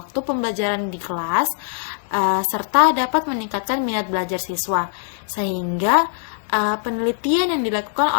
pembelajaran di kelas, serta dapat meningkatkan minat belajar siswa. Sehingga penelitian yang dilakukan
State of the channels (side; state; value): right; silent; 65 dB below the other